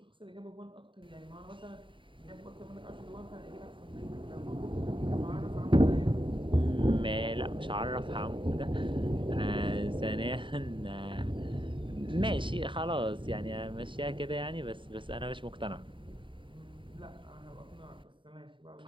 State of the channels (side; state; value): left; late; 0.24 ms